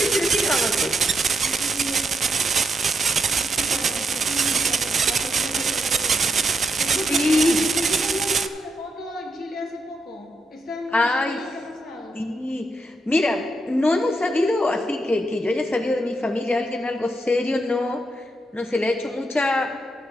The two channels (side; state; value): both; normal; correlation 0.80